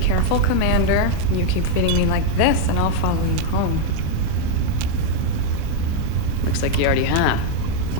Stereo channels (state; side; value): different; both; correlation 0.00